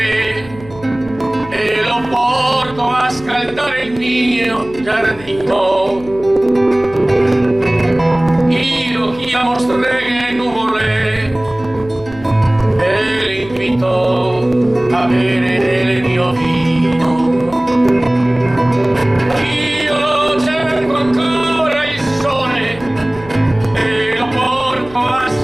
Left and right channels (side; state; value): left; noise; hum, 19 dB below the sound